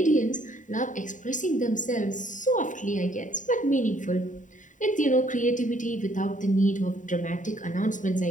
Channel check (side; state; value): right; late; 0.37 ms